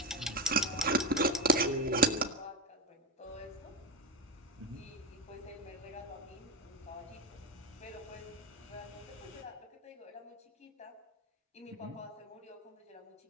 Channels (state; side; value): normal; both; correlation 0.18